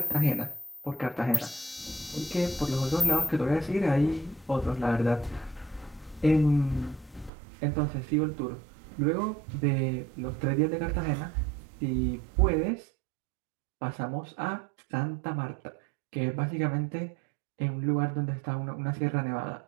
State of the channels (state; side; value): drops out; left; at 7.3 s